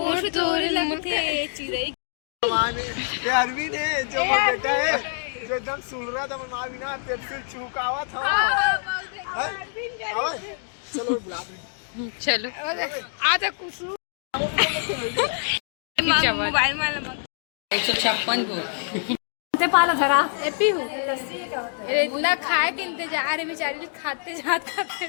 तोड़ लमके चिरई अरविंद है जो बेटा है जो एकदम सुन रहा था माँ बिना पेप्सिल चुकावा था। चलो बुला चलो आज कुछ मोबाइल में 156 को पालो जरा एपी हूँ इतना खाए के इंतजार है बेचारी खाते जा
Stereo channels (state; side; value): silent; right; digital silence